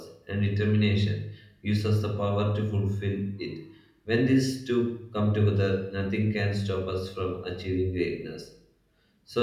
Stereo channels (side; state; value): both; identical; correlation 1.00